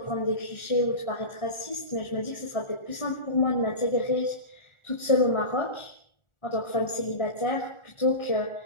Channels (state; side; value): late; right; 1.4 ms